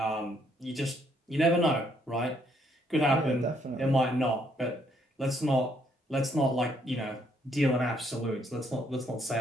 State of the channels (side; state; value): both; normal; correlation 0.70